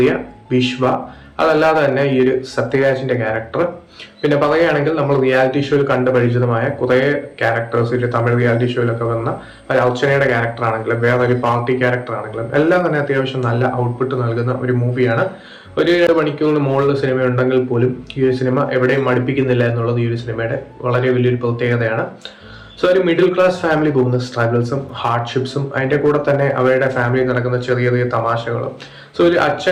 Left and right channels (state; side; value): identical; both; correlation 1.00